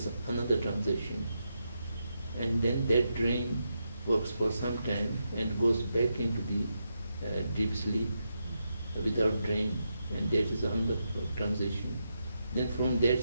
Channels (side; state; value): both; inverted; correlation -0.85